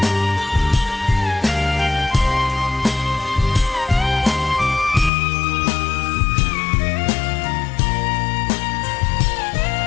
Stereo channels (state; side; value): drops out; right; at 5.1 s